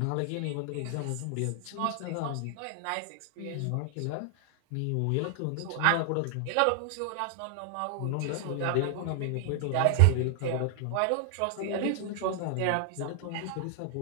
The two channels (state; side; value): different; both; correlation 0.00